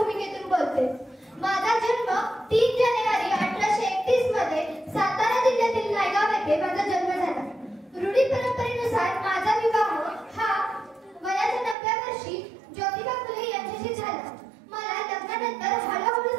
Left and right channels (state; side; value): drops out; left; at 11.8 s